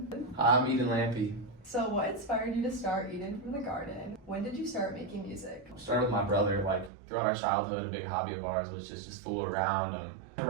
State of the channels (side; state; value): left; drops out; at 6.9 s